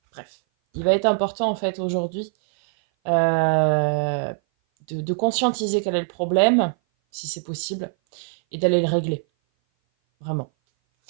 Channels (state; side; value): silent; left; 58 dB below the other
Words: Bref, il va être important, en fait, aujourd'hui, de conscientiser quel est le problème, si c'est possible, et d'aller le régler. Vraiment.